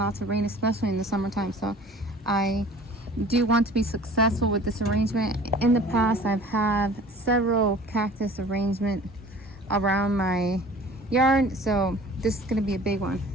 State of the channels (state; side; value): normal; both; correlation 0.46